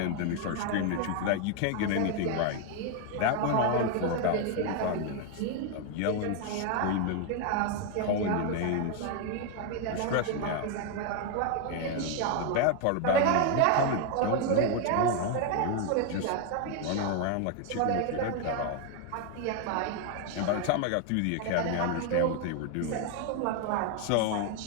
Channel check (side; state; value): both; different; correlation 0.01